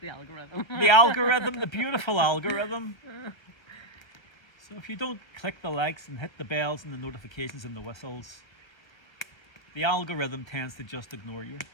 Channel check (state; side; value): late; right; 1.2 ms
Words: The algorithm. The algorithm, the beautiful algorithm. So if you don't click the likes and hit the bells and the notifications and the whistles, the algorithm tends to just ignore you.